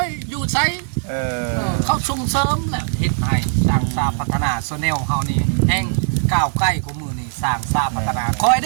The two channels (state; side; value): silent; left; digital silence